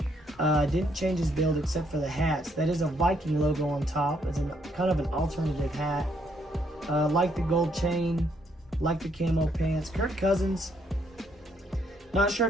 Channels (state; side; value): normal; both; correlation 0.71